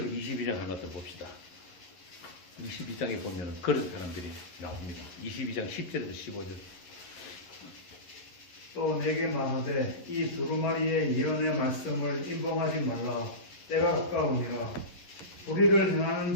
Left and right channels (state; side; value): late; right; 11 ms